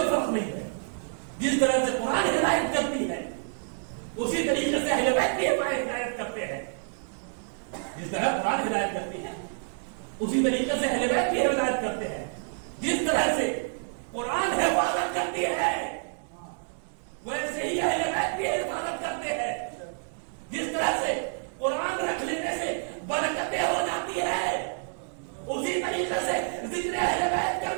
فرق نہیں ہے. جس طرح سے قرآن ہدایت کرتی ہے اسی طریقے سے اہل بیت بھی ہدایت کرتے ہیں. جس طرح قرآن ہدایت کرتی ہے اسی طریقے سے اہل بیت بھی ہدایت کرتے ہیں. جس طرح سے قرآن حفاظت کرتی ہے ویسے ہی اہل بیت بھی حفاظت کرتے ہیں. جس طرح سے قرآن رکھ لینے سے برکتیں ہو جاتی ہے اسی طریقے سے ذکر اہل بیت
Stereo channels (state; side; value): silent; left; digital silence